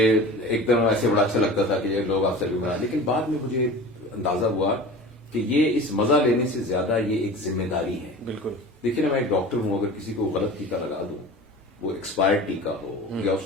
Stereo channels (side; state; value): both; normal; correlation 0.36